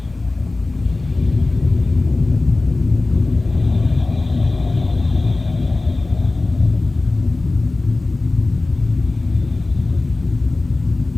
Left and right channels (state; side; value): quieter; right; 3.2 dB